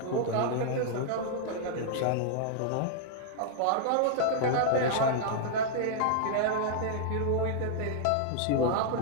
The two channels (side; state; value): both; different; correlation -0.01